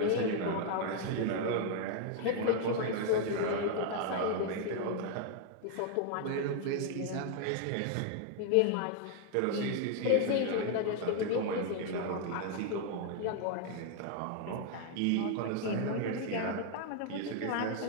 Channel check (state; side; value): different; both; correlation 0.00